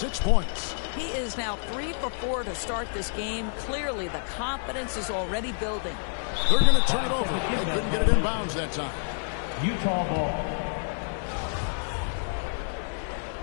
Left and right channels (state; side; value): silent; right; 59 dB below the other